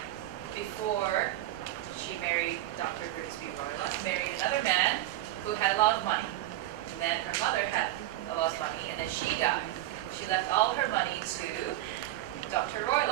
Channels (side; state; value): left; quieter; 15.2 dB